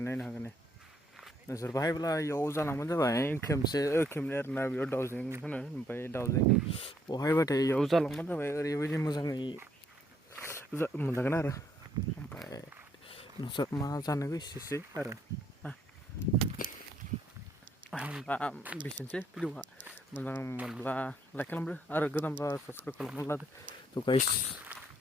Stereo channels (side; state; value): both; normal; correlation 0.70